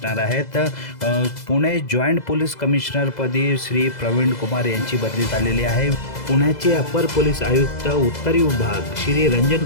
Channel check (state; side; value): late; right; 2.0 ms